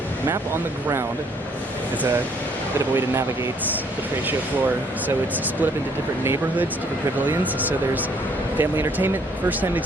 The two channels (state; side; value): normal; both; correlation 0.64